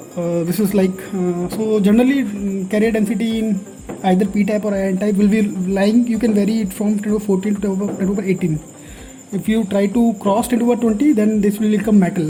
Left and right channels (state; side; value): identical; both; correlation 1.00